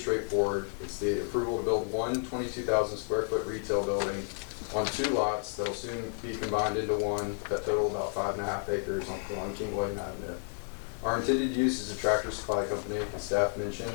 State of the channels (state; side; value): silent; right; 57 dB below the other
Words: It's the approval to build one 22,000 square foot retail building on 2 lots that'll soon be combined into one that total about 5.5 acres on King William Avenue. Our intended use is a Tractor Supply Company, as staff mentioned,